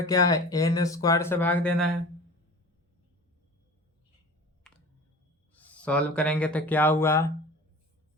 क्या है, n स्क्वायर से भाग देना है। सॉल्व करेंगे तो क्या हुआ,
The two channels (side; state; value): both; normal; correlation 0.38